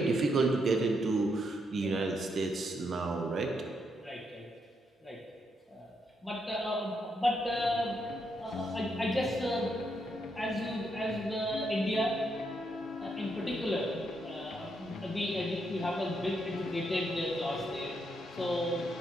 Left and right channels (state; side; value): normal; both; correlation 0.78